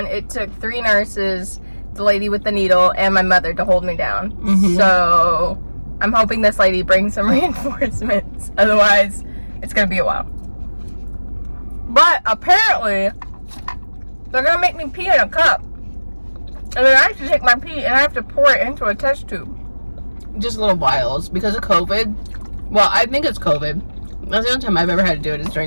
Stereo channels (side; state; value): both; inverted; correlation -1.00